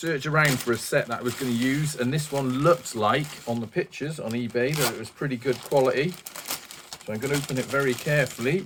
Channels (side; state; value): both; identical; correlation 1.00